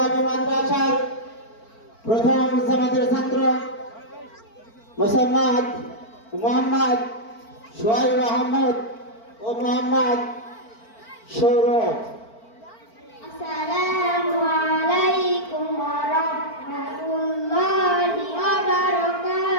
মাদ্রাসার প্রথম জামাতের ছাত্র মোহাম্মদ সোহাইব আহমদ ও মোহাম্মদ সৌরভ। আসসালামু আলাইকুম ওয়া রাহমাতুল্লাহি ওয়া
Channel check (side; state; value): right; late; 4.5 ms